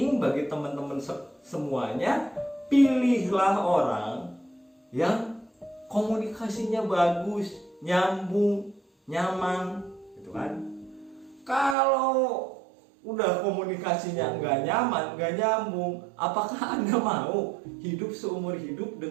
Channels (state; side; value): drops out; left; at 11.8 s